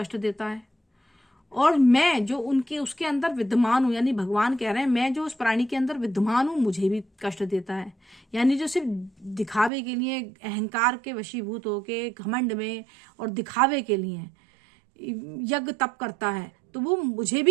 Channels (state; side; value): drops out; left; at 9.7 s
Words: देता है। और मैं जो उसके अंदर विद्यमान हूँ, यानी भगवान कह रहे हैं मैं जो उस प्राणी के अंदर विद्यमान हूँ मुझे भी कष्ट देता है। यानी जो सिर्फ दिखावे के लिए, अहंकार के वशीभूत होके घमंड में और दिखावे के लिए यज्ञ तप करता है, तो वो मुझे